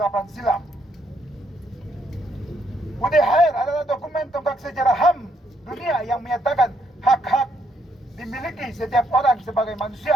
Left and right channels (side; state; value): both; normal; correlation 0.73